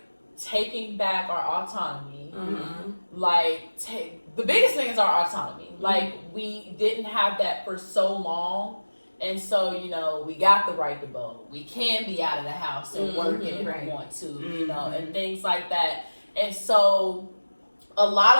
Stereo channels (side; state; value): both; inverted; correlation -1.00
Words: taking back our autonomy. Like the biggest thing is our autonomy. Like we didn't have that for so long. And so, you know, we got the right to vote. We can be out of the house and working if we want to, you know, and things like that. And so a